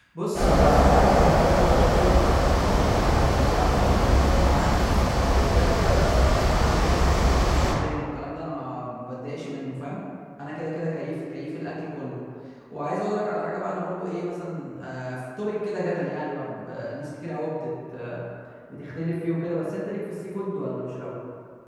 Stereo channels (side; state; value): both; identical; correlation 1.00